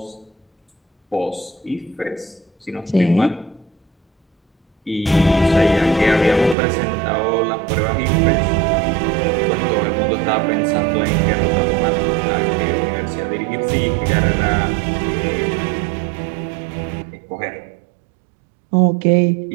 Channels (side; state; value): left; drops out; at 6.6 s